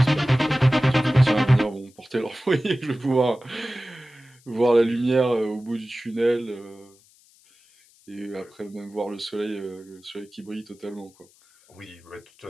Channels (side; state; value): left; noise; hiss, 30 dB below the sound